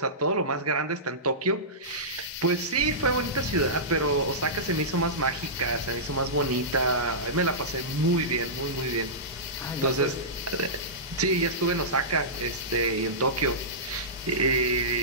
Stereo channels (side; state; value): both; normal; correlation -0.18